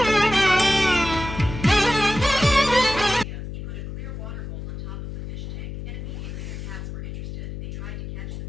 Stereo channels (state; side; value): noise; left; hum, 8 dB below the sound